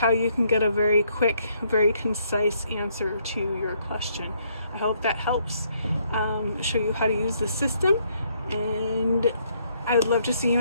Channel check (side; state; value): both; inverted; correlation -0.70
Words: you can get a very quick, very concise answer to your question. I hope that helps show you how to use the system, and I would love to see you